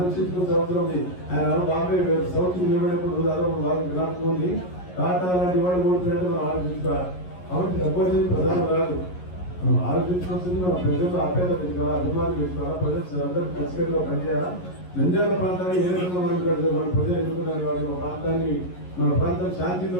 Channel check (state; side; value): late; right; 11 ms